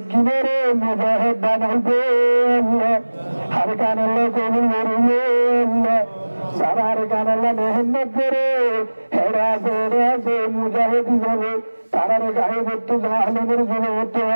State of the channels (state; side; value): inverted; both; correlation -1.00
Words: মুজাহিদ বানাইবে আল্লাহ হর কান আল্লাহ কবুল করবে আল্লাহ সারার কান আল্লাহ মেহনত করে হেরাছে মুজাহিদ হিসাবে তারার গায়ে বর্তু জাহালেমের জনবর্তু